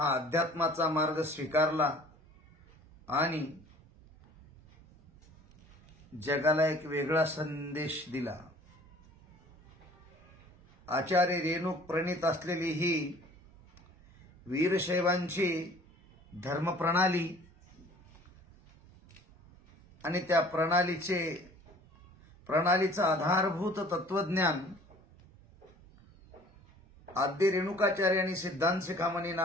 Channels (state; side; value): normal; both; correlation 0.51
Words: अध्यात्माचा मार्ग स्वीकारला आणि जगाला एक वेगळा संदेश दिला। आचार्य रेणुक प्रणीत असलेली ही वीरशैवांची धर्मप्रणाली आणि त्या प्रणालीचं आधारभूत तत्वज्ञान आद्य रेणुकाचार्यांनी सिद्धांत शिखामणी